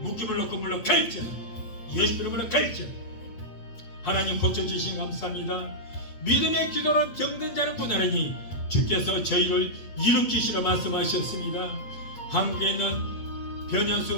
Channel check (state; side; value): late; right; 8.3 ms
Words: 묶임을 놓고 물러 갈지어다. 예수 이름으로 갈지어다. 하나님 고쳐주신 감사합니다. 믿음의 기도로 병든 자를 구하느니 주께서 저희를 일으키시라 말씀하셨습니다. 한국에 있는